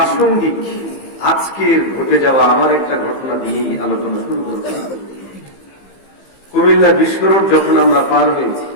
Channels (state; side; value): late; right; 15 ms